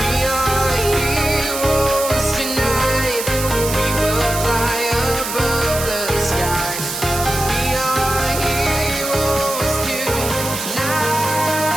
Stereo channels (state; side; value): noise; right; hiss, 6 dB below the sound